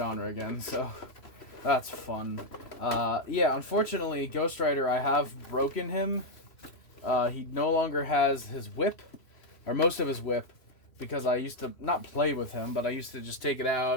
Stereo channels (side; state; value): right; late; 3.0 ms